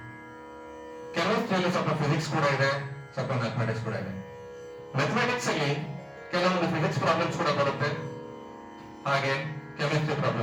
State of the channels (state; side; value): identical; both; correlation 1.00